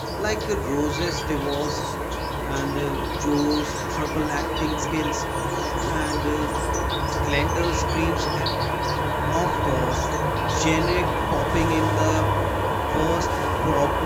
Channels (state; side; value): identical; both; correlation 1.00